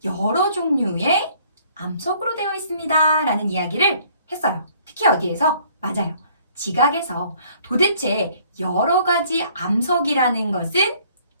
여러 종류의 암석으로 되어 있습니다 라는 이야기를 했어요. 특히 어디에서? 맞아요. 지각에서. 도대체 여러 가지 암석이라는 것은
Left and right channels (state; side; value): inverted; both; correlation -0.60